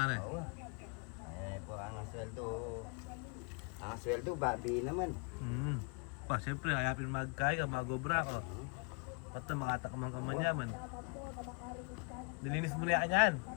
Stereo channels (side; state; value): right; quieter; 35.2 dB